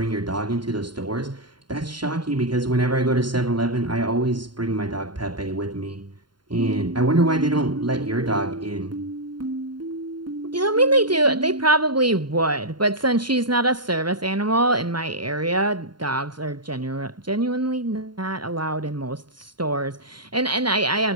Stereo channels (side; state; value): left; late; 0.72 ms